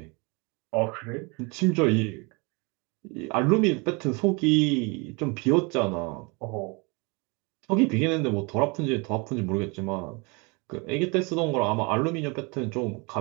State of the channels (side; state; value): left; quieter; 29.7 dB